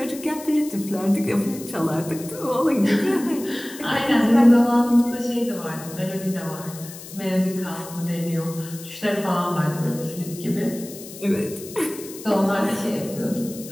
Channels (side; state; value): left; noise; hiss, 15 dB below the sound